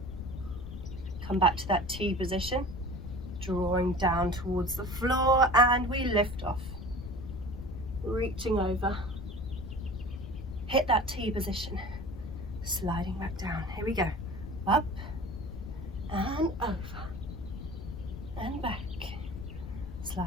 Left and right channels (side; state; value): left; noise; rumble, 10 dB below the sound